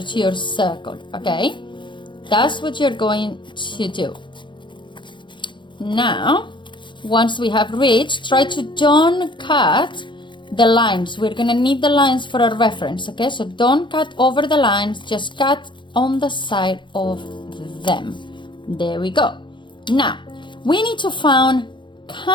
your circle, okay? That's what you're going to do. Now, once we have reached, try to don't cut the lines. We're gonna need the lines for a reference, okay? So don't cut over the lines, just cut on the side of them. There we go. Now, we need to find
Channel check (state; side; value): late; right; 0.23 ms